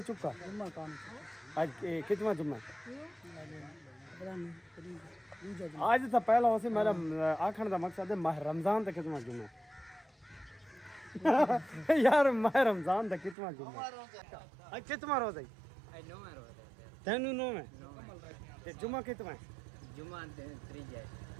चुका। जुम्मा कौन? आज कितना जुम्मा? आज तो पहला वैसे मेरा आखण दा मकसद है माह रमजान दा कितना जुम्मा यार माह रमजान दा कितना जुम्मा? आज कितना रोजा है? तेनू नो है ते जुम्मा कितना है? जुम्मा त्रीज है।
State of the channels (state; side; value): drops out; left; at 13.4 s